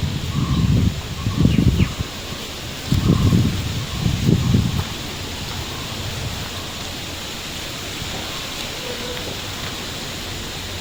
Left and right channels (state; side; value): noise; right; rumble, 15 dB below the sound